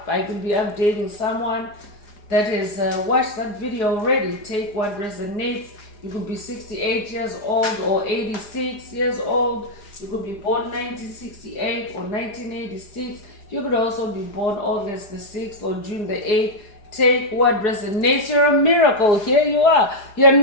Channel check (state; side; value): late; right; 4.9 ms